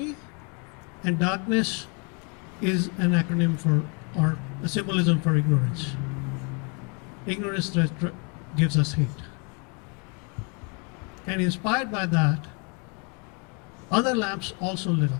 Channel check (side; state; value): right; quieter; 35.2 dB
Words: and darkness is an acronym for, or a symbolism for ignorance. Ignorance that gives us hate. And inspired by that, other lamps also lit